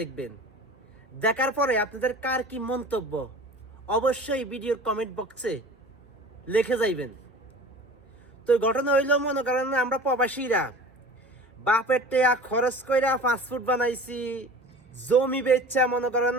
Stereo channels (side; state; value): both; normal; correlation 0.40